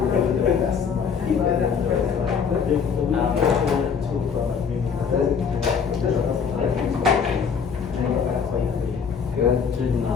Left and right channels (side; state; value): right; quieter; 6.4 dB